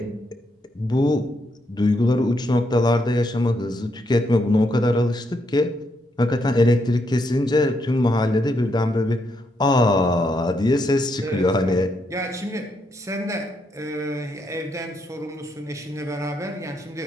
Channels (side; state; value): both; normal; correlation 0.78